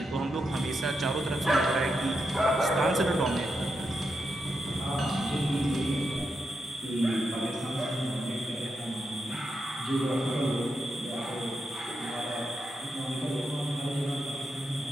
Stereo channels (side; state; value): both; normal; correlation 0.85